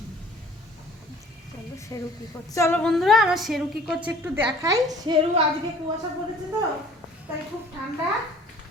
চলো শেরু কি করছে? চলো বন্ধুরা, আমার শেরু কি করছে একটু দেখাই। শেরু আজকে কুয়াশা পড়েছে তো, তাই খুব ঠান্ডা।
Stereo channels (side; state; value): both; normal; correlation 0.51